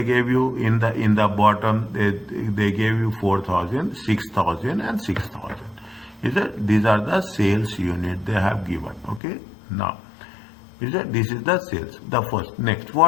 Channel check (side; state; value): right; drops out; at 9.2 s